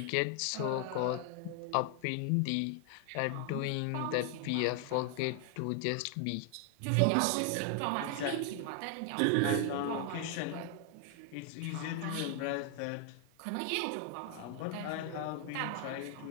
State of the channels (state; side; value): different; both; correlation 0.00